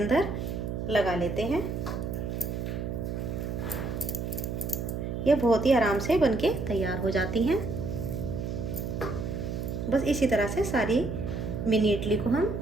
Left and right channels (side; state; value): right; noise; hum, 4 dB below the sound